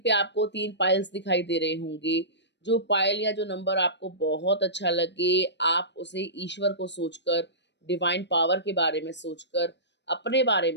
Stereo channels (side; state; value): right; late; 0.51 ms